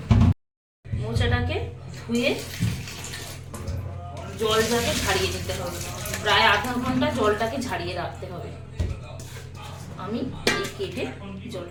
মোচাটাকে ধুয়ে জলটাকে ঝাড়িয়ে নিতে হবে, প্রায় আধা ঘন্টা জলটাকে ঝাড়িয়ে রাখতে হবে। আমি এই কেটে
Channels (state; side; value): identical; both; correlation 1.00